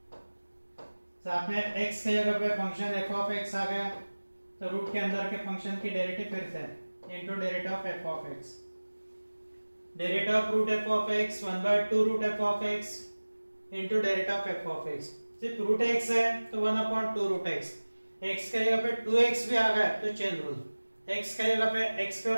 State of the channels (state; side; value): inverted; both; correlation -1.00